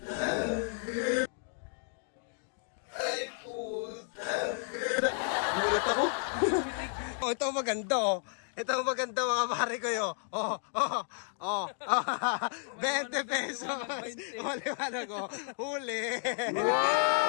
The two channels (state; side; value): silent; right; 56 dB below the other